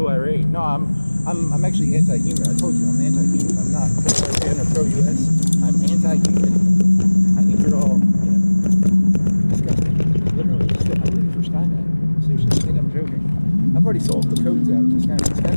No, I'm actually anti-human. I told you I'm anti-human. I'm not pro-Iran or pro-US. I'm anti-human. I think you're all, disgusting. Literally, I'm ready for Skynet. Seriously, I think I'm joking. I've already solved the codes out.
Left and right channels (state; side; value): inverted; both; correlation -1.00